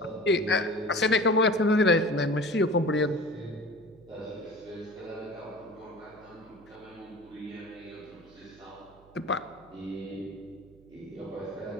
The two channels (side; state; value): right; noise; hum, 27 dB below the sound